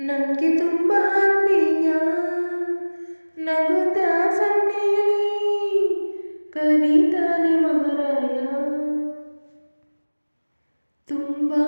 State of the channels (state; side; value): inverted; both; correlation -1.00